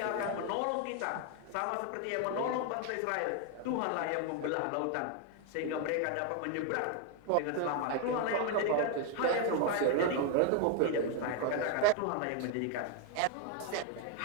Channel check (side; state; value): both; different; correlation 0.01